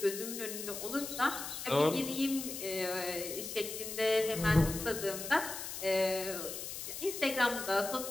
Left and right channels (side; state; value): left; noise; hiss, 7 dB below the sound